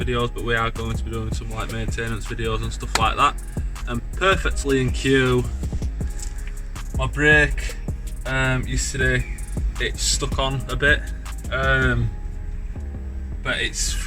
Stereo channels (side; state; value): both; identical; correlation 1.00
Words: but we are going to be doing some like maintenance videos and stuff like that. And perfectly in cue, my brake yesterday it stuck on a bit, but it's